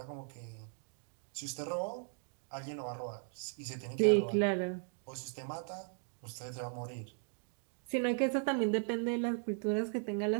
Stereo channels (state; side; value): silent; left; 53 dB below the other